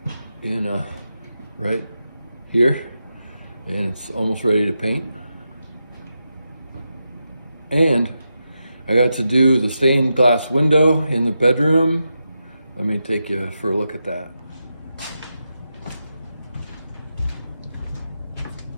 and right here, and it's almost ready to paint. And I got to do the stained glass window in the bedroom. Let me take you for a look at that.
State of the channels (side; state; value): both; inverted; correlation -0.87